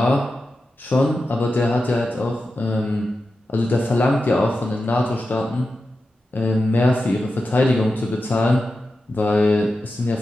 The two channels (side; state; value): both; normal; correlation 0.91